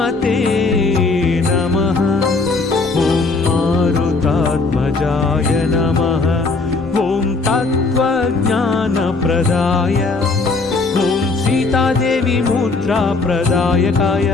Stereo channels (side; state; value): right; quieter; 3.8 dB